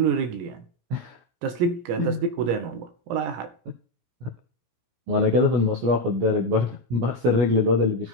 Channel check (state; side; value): late; left; 17 ms